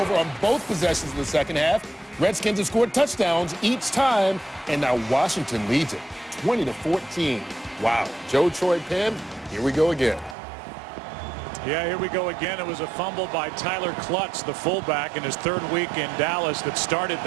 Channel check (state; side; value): drops out; left; at 10.4 s